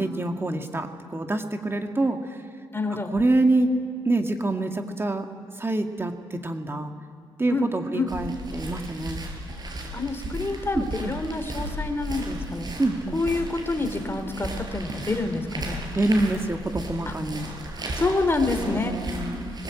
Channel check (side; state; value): both; normal; correlation 0.83